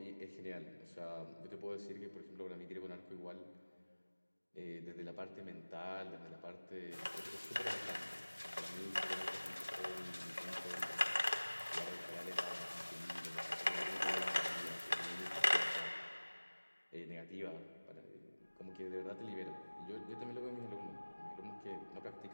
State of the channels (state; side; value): inverted; both; correlation -1.00